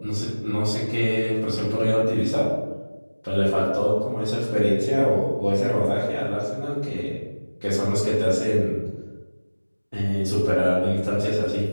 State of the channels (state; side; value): inverted; both; correlation -1.00